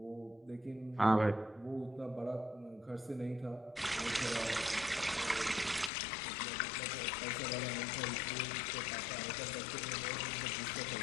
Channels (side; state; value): right; drops out; at 5.9 s